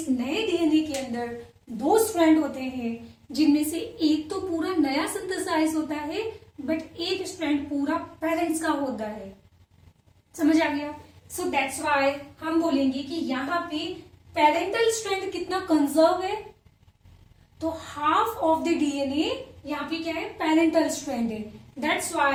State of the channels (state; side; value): identical; both; correlation 1.00